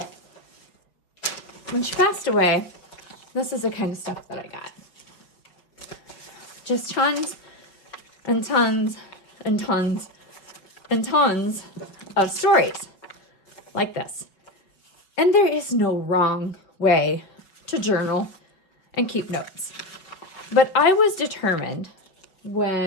When she passed away, this is the kind of stuff that I got. Just tons and tons and tons and tons of stories like this. And there is no wrong way to journal and keep notes. But I was determined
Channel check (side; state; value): right; late; 5.3 ms